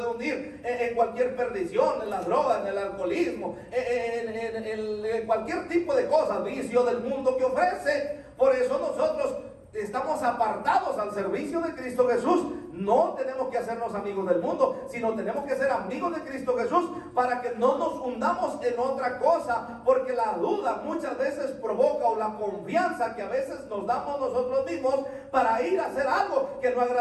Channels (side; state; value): both; identical; correlation 1.00